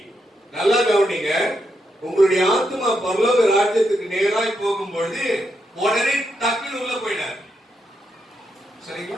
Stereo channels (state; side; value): normal; both; correlation 0.82